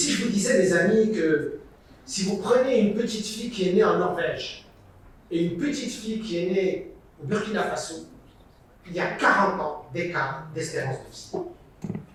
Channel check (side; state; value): both; identical; correlation 1.00